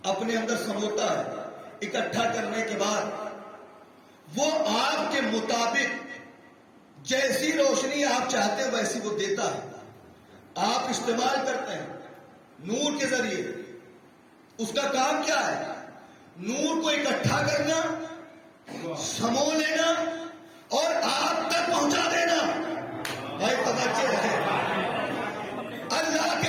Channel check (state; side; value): identical; both; correlation 1.00